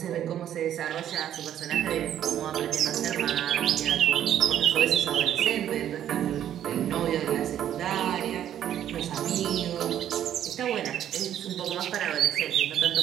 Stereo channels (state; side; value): quieter; left; 10.8 dB